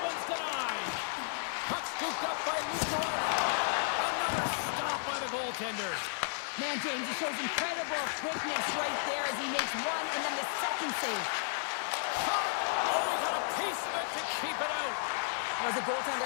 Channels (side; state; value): right; silent; digital silence